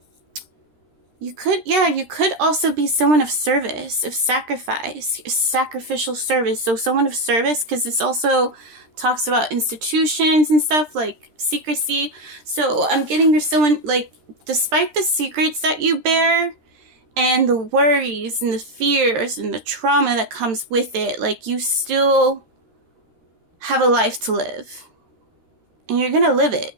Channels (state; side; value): late; left; 13 ms